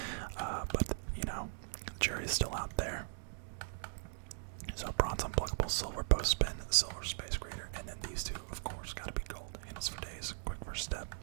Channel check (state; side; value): silent; left; digital silence